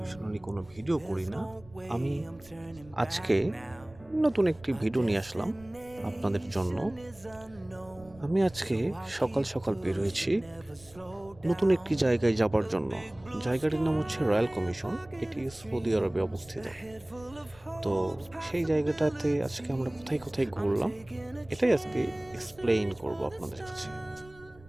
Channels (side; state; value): right; noise; rumble, 23 dB below the sound